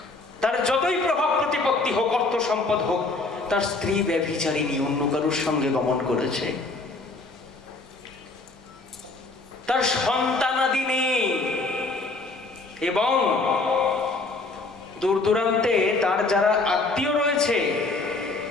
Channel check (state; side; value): quieter; right; 3.4 dB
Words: তার যতই প্রভাব প্রতিপত্তি হোক, অর্থ সম্পদ হোক, তার স্ত্রী ব্যভিচারিণী, অন্য কারোর সঙ্গে গমন করেছে, তার সন্তানাদি নেই, এবং দূর দূরান্তে তার যারা আত্মীয় রয়েছে